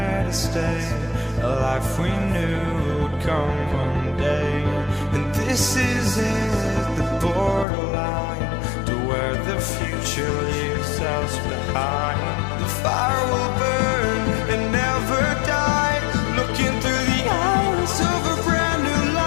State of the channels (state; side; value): drops out; right; at 7.7 s